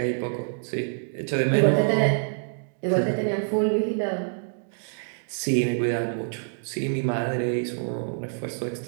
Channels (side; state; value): left; silent; digital silence